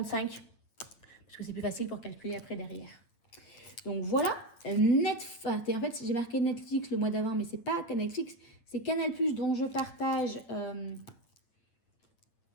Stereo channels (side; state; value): right; late; 8.8 ms